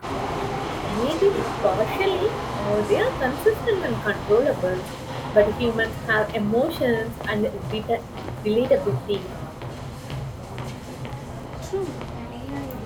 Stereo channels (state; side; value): identical; both; correlation 1.00